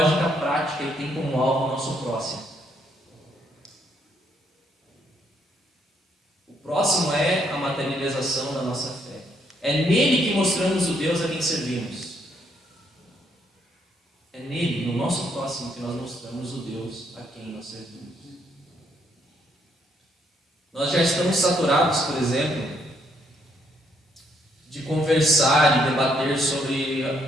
prática e tem como alvo o nosso próximo. O próximo é a materialização da nossa fé. É nele que mostramos o Deus a quem servimos. É nele, no nosso próximo, que nós mostramos o Deus a quem nós servimos. Nós já estamos saturados, por exemplo, de conversar e debater sobre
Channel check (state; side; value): normal; both; correlation 0.72